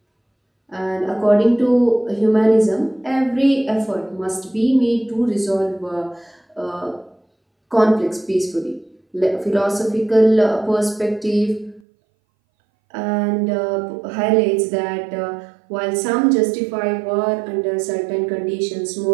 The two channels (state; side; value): drops out; left; at 11.8 s